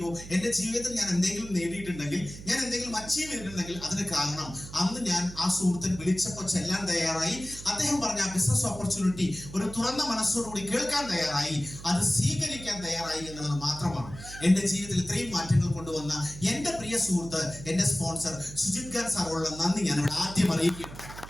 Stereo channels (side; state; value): right; noise; hum, 13 dB below the sound